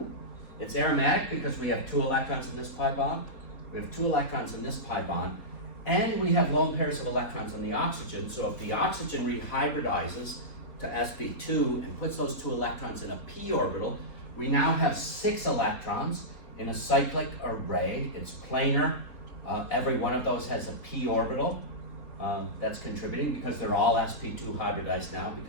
It's aromatic because we have 2 electrons in this pi bond, we have 2 electrons in this pi bond, and we have lone pairs of electrons in the oxygen. So if the oxygen rehybridizes to sp2 and puts those 2 electrons in a p orbital, we now have 6 electrons in a cyclic array. It's planar. Every one of those has a p orbital. That's contributing because they're all sp2 hybridized now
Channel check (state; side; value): late; right; 3.7 ms